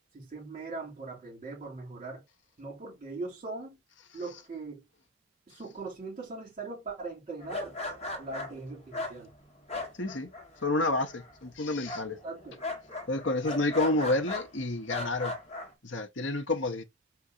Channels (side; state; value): both; normal; correlation 0.12